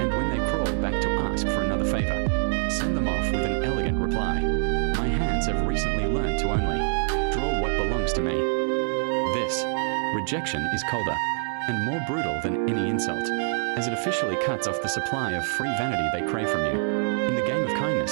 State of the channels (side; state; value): left; silent; 55 dB below the other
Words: And when they crawl back to ask for another favor, send them off with an elegant reply. My hands have recently learned to only draw what belongs to me. This rejection is colder and more brutal than any insult, as it officially cuts off the supply of free vanity they crave from you. In the game of